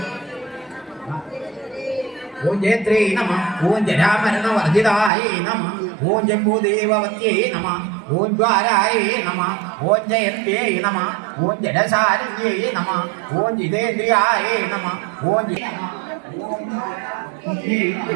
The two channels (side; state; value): left; drops out; at 5.1 s